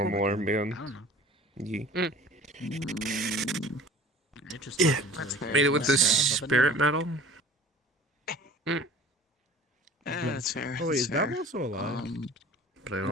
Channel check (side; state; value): both; normal; correlation 0.45